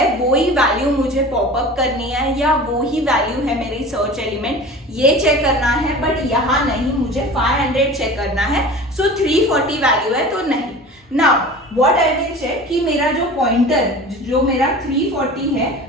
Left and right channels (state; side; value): normal; both; correlation 0.37